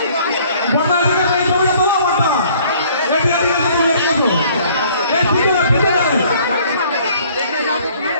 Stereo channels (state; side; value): inverted; both; correlation -0.57